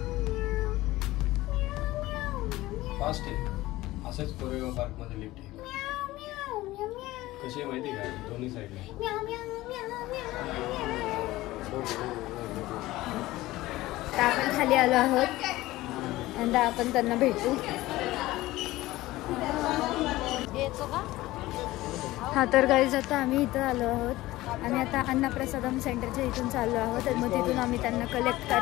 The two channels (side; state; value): right; quieter; 17.7 dB